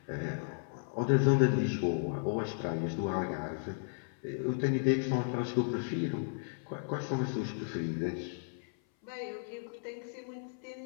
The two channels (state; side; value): silent; right; 55 dB below the other